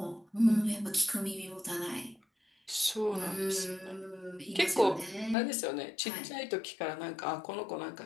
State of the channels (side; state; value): right; drops out; at 5.4 s